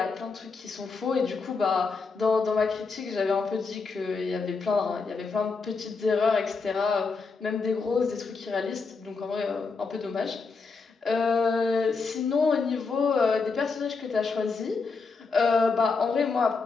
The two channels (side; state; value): right; quieter; 4.6 dB